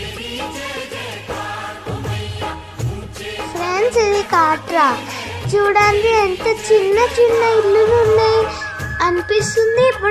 ఫ్రెండ్స్, ఇది కాట్రా. చూడండి ఎంత చిన్న చిన్న ఇల్లులు ఉన్నాయి అనిపిస్తుంది.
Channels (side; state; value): both; identical; correlation 1.00